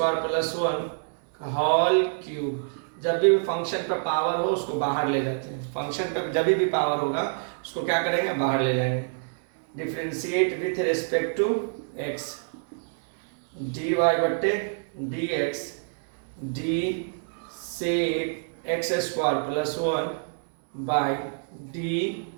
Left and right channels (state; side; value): silent; left; digital silence